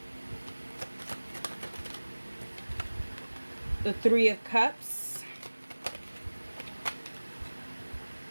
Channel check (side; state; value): both; inverted; correlation -1.00